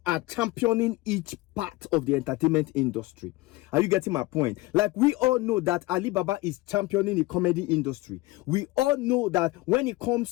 are championing each part of the entertainment industry. Are you getting my point? Like we all know that Alibaba is championing the comedy industry. We all know that when it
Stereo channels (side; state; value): right; quieter; 20.3 dB